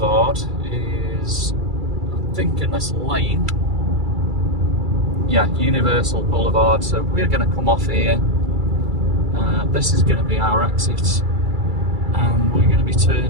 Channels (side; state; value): left; late; 2.3 ms